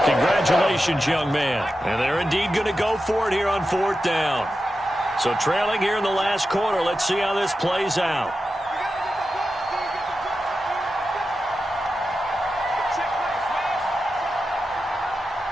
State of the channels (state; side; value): normal; both; correlation 0.91